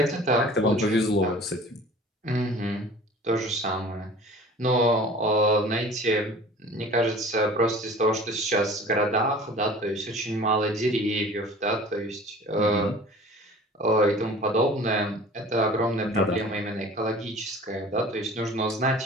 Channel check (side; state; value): both; normal; correlation 0.44